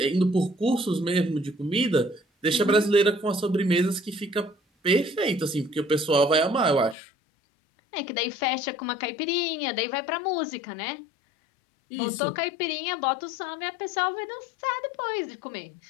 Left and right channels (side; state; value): right; drops out; at 7.0 s